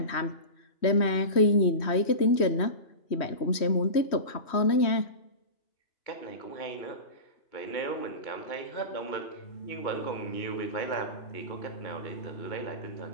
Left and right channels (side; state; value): right; late; 3.1 ms